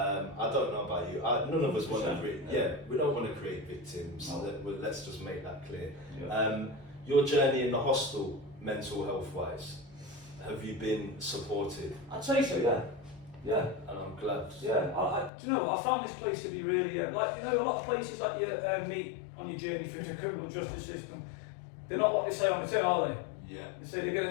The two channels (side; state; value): right; drops out; at 15.3 s